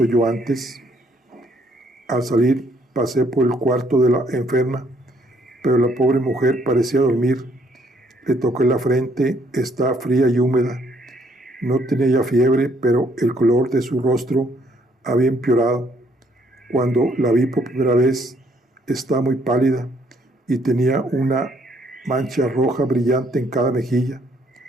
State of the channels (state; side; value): normal; both; correlation 0.67